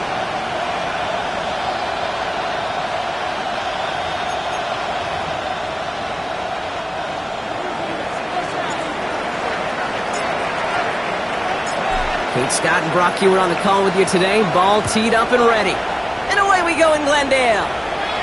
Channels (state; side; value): identical; both; correlation 1.00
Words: Kate Scott and Brock Hewitt on the call with you today. Ball teed up and ready. And away we go in Glendale.